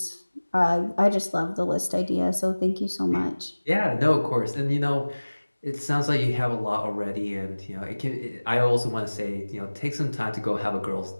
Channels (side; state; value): both; inverted; correlation -1.00